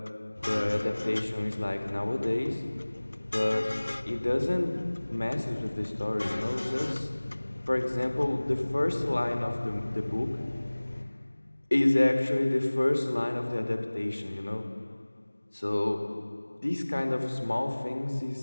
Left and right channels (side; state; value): both; inverted; correlation -1.00